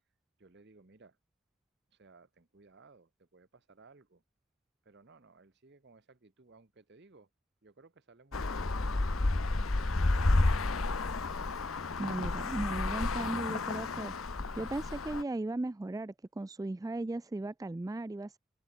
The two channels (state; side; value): normal; both; correlation 0.82